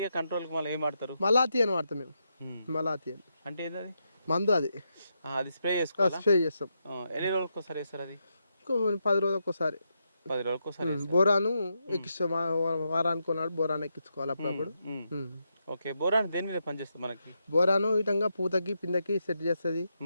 కంట్రోల్కి మళ్ళీ ఏం వాడతారు? మలాతి అని వాడతాం మేము. మలాతి అని అంటే ఏది? మందు. అది స్ప్రే చేసుకోవాలి. స్ప్రే చేస్తాం. ఎన్ని రోజులకు ఒకసారి వేస్తారు అది? 10 రోజులకు ఒకసారి. 10 రోజులకు ఒకసారి బోరాను ఎక్కిస్తాం. వారానికి కొన్నాడు బోరాను ఎక్కించుకోవాలి అప్పుడప్పుడు. ఓకే, బోరాన్ దేని మీద పనిచేస్తుంది మనకి? బోరాను ఇటంగా పూతకి పిందకి సెట్ చేస్తుంది,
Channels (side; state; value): both; inverted; correlation -0.83